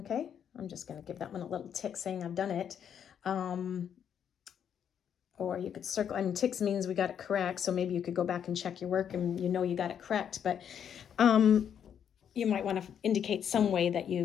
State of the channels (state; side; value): quieter; right; 8.6 dB